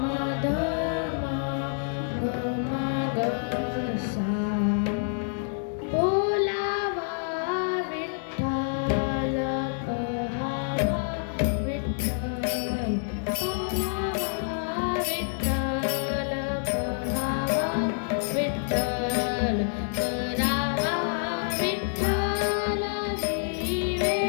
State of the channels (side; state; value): right; silent; 60 dB below the other